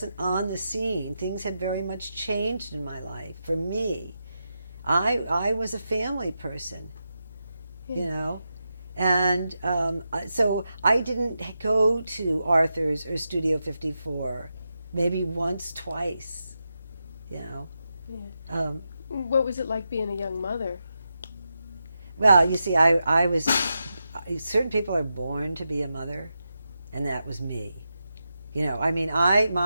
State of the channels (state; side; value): inverted; both; correlation -0.87